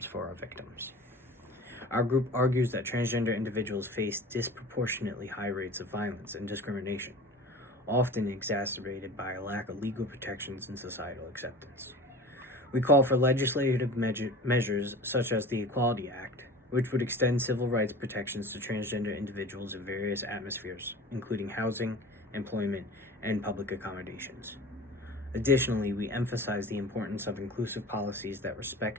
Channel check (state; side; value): normal; both; correlation 0.38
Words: for our victims. Our group argues that transgender individuals face disproportionately high rates of violence and discrimination, often exacerbated by a lack of legal protections and societal acceptance. We call for legislative measures such as the Equality Act, which would extend civil rights protections to transgender individuals in various atmospheres, including housing, employment, and public accommodations. Additionally, we emphasize the importance of inclusive policies that